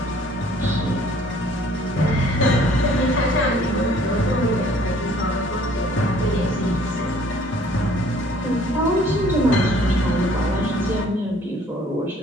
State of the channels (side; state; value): both; normal; correlation 0.57